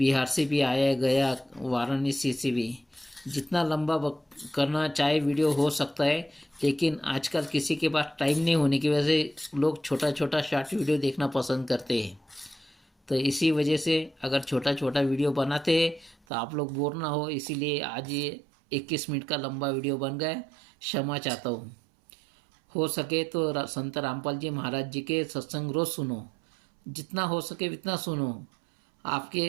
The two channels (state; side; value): drops out; left; at 16.2 s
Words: से भी आया गया, वाराणसी से भी। जितना लंबा करना चाहे वीडियो हो सकता है, लेकिन आजकल किसी के पास टाइम नहीं होने की वजह से लोग छोटा छोटा शॉर्ट वीडियो देखना पसंद करते हैं। तो इसी वजह से अगर छोटा छोटा वीडियो बनाते हैं तो आप लोग बोर ना हो, इसीलिए आज ये 21 मिनट का लंबा वीडियो बन गया। क्षमा चाहता हूँ। हो सके तो संत रामपाल जी महाराज जी के सत्संग रोज सुनो, जितना हो सके उतना सुनो।